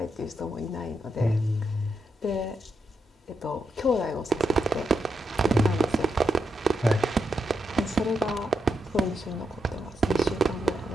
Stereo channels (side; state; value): both; normal; correlation 0.83